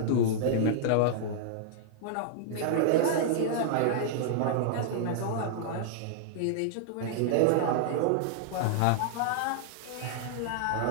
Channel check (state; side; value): different; both; correlation -0.01